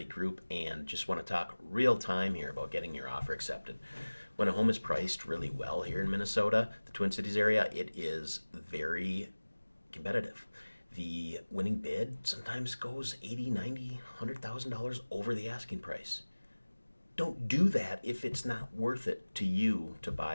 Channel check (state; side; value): inverted; both; correlation -1.00